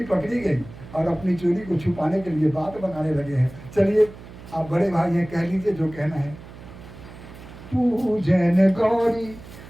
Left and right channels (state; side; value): noise; right; hum, 17 dB below the sound